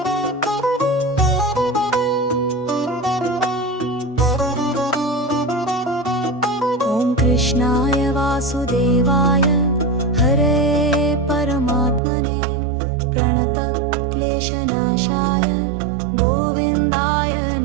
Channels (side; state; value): left; drops out; at 12.0 s